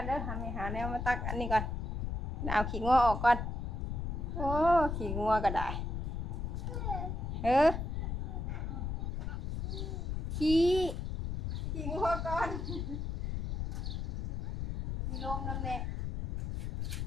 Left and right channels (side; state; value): left; noise; rumble, 2 dB below the sound